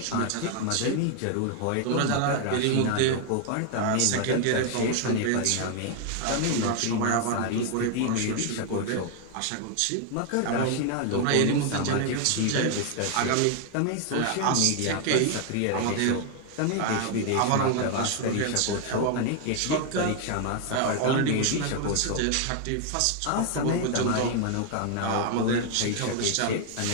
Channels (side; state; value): both; different; correlation 0.00